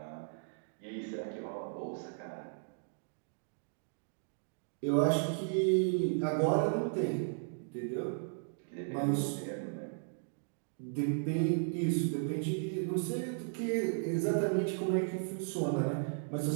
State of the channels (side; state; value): left; silent; digital silence